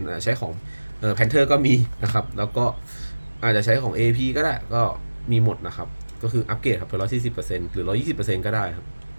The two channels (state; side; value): inverted; both; correlation -1.00